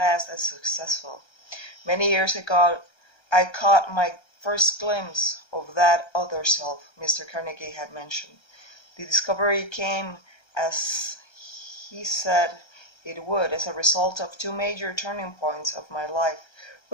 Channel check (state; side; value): late; right; 1.3 ms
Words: as successful. Many years ago, I caught my first glimpse of that other self Mr. Carnegie had mentioned. The discovery came, as he said it would, as a result of two major turning points of my life,